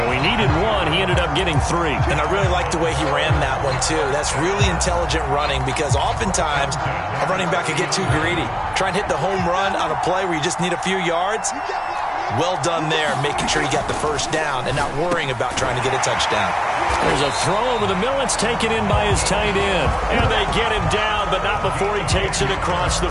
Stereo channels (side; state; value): both; identical; correlation 1.00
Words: he needed 1. He ended up getting 3. And I really like the way he ran that one, too. That's really intelligent running because oftentimes a running back can get too greedy. Try and hit the home run on a play where you just need a few yards. Well done there, making sure he got the first down and not worrying about trying to get a touchdown. There's a throw over the middle. It's taken in by his tight end. And they get him down, but not before he takes it across the